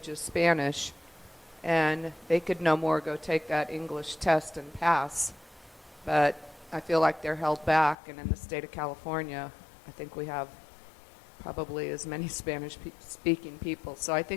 is Spanish, and they could no more go take that English test and pass. But I feel like they're held back, and in the state of California, I think we have probably as many Spanish-speaking people. So I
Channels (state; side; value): drops out; right; at 8.0 s